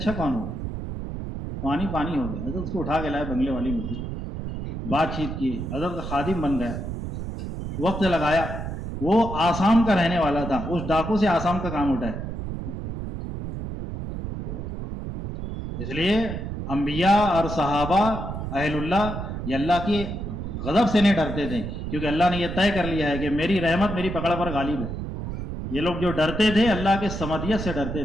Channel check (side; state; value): right; noise; rumble, 6 dB below the sound